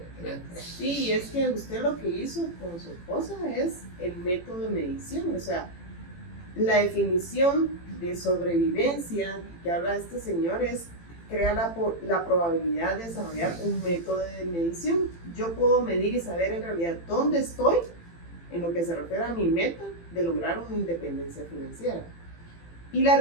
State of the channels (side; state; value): right; late; 18 ms